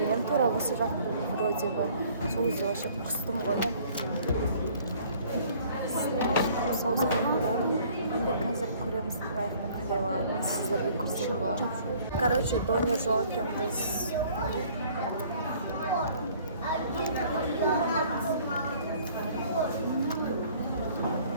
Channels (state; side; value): inverted; both; correlation -0.56